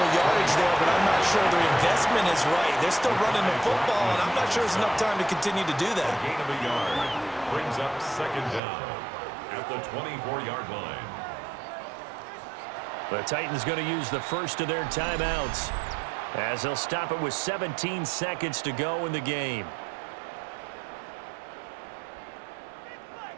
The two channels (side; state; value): left; drops out; at 8.6 s